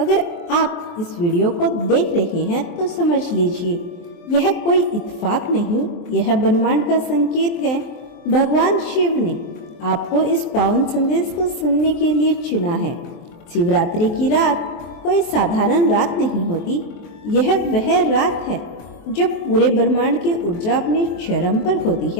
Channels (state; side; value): late; right; 23 ms